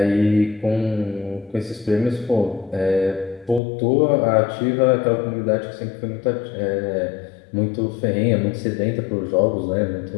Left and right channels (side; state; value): right; drops out; at 3.6 s